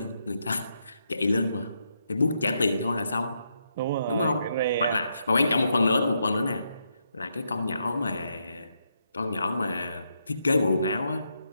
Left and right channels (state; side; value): inverted; both; correlation -0.80